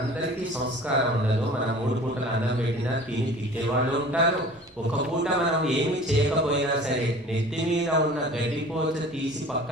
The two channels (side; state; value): both; normal; correlation 0.44